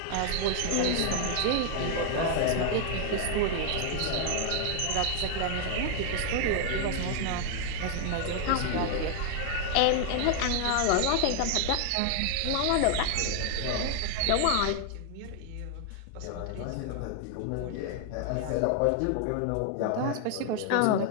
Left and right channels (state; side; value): different; both; correlation 0.00